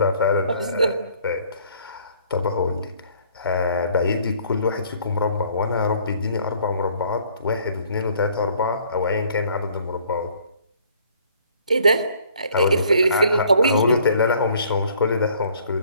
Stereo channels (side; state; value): both; inverted; correlation -0.59